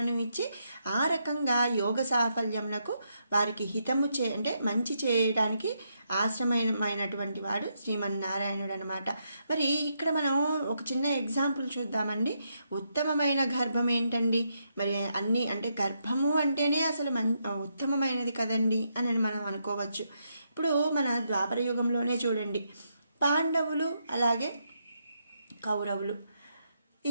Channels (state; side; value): inverted; both; correlation -0.79